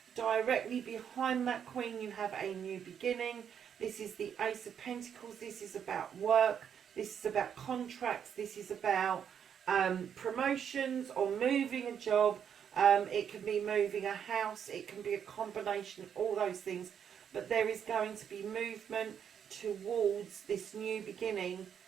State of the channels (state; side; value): quieter; left; 8.2 dB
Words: Directly behind that Queen, you have a new beginning. This is the Ace of Pentacles. This is about work. This is about contracts. This is about promotions or moving a job. It can be moving a house. It can be a combination of all those things. But there is going to be movement towards this new beginning